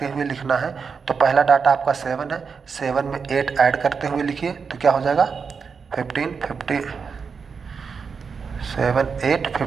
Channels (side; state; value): left; quieter; 5.7 dB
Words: हुए लिखना है। तो पहला डाटा आपका 7 है, 7 में 8 ऐड करते हुए लिखिए, तो क्या हो जाएगा 15 50 7 8